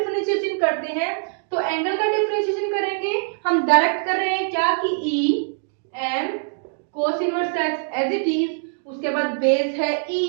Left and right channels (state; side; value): silent; left; digital silence